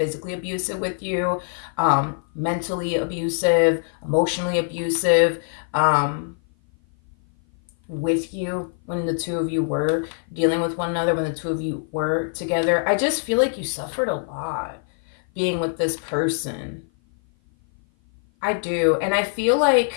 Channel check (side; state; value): right; silent; 56 dB below the other